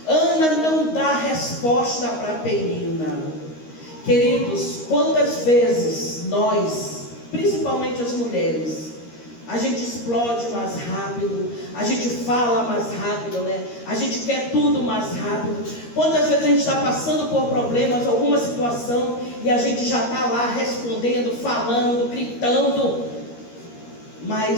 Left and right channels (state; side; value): late; right; 13 ms